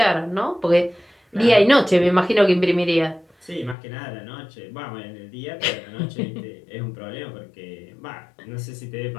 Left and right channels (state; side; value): drops out; right; at 3.8 s